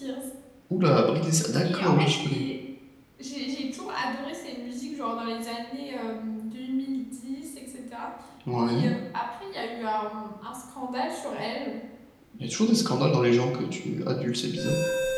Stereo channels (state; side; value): identical; both; correlation 1.00